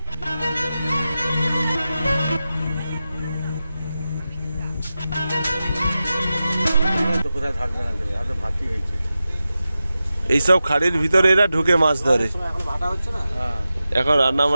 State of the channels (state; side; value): inverted; both; correlation -0.93